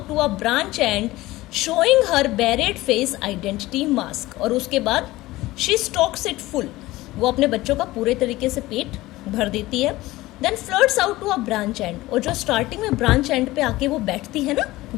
to a branch end showing her bared face identity mask, और उसके बाद शी स्टॉक्स इट फुल, वो अपने बच्चों का पूरे तरीके से पेट भर देती है. Then flirts out to a branch and, और जो स्टार्टिंग में ब्रांच एंड पे आके वो बैठती है ना,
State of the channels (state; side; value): quieter; right; 18.2 dB